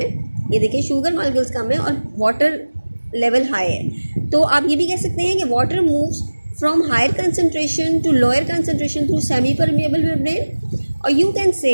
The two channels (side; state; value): both; inverted; correlation -1.00